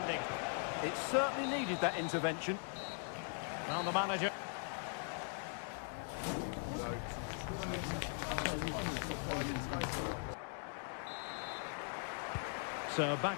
It certainly needed that intervention. Well, the manager. So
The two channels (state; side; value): silent; right; 51 dB below the other